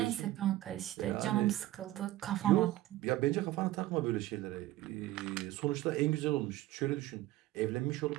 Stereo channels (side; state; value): left; quieter; 15.7 dB